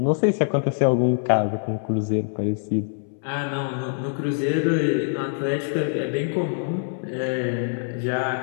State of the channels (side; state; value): right; silent; 62 dB below the other